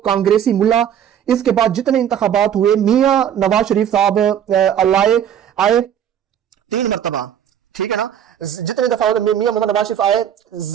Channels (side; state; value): left; quieter; 9.5 dB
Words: कांग्रेसी मुल्ला। इसके बाद जितने इंतखाबात हुए, मियां नवाज शरीफ साहब आए 3 मरतबा, ठीक है ना, जितने दफा मियां मोहम्मद नवाज शरीफ आए